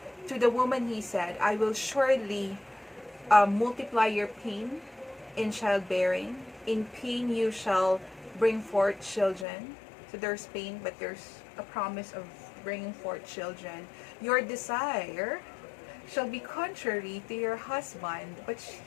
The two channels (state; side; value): drops out; right; at 9.5 s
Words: To the woman he said, I will surely multiply your pain in childbearing. In pain you shall bring forth children. So there's pain, but there's a promise of bringing forth children. Your desire shall be contrary to your husband, but